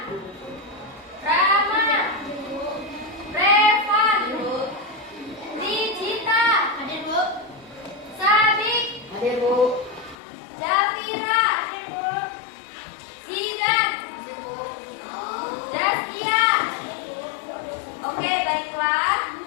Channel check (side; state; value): right; drops out; at 10.2 s